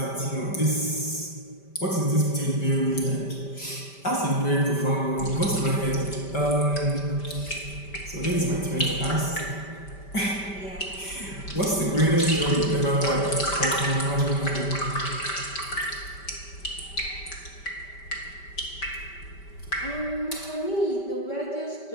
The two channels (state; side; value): late; right; 5.1 ms